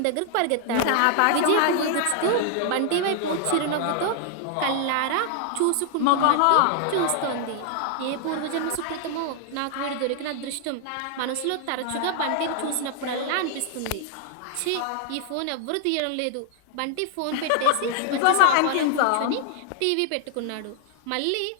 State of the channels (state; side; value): different; both; correlation 0.00